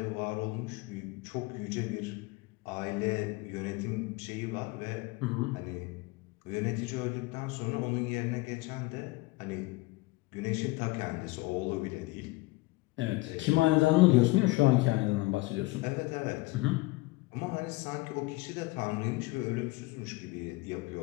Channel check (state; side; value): quieter; right; 22.1 dB